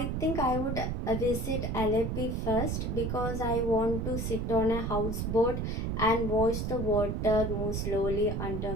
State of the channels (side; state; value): right; noise; rumble, 2 dB below the sound